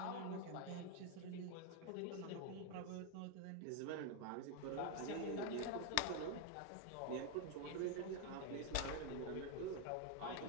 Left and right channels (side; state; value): both; different; correlation 0.01